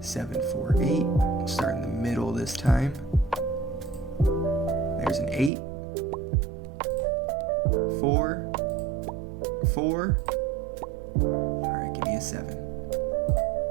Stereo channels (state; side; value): drops out; left; at 5.5 s